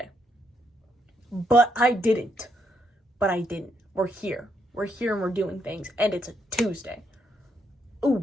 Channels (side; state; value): both; normal; correlation 0.76